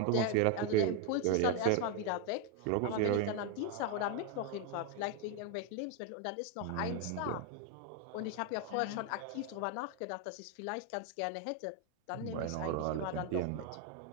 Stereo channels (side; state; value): both; different; correlation 0.01